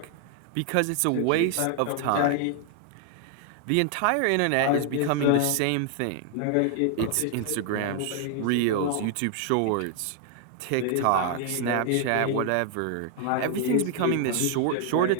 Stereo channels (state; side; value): different; both; correlation 0.00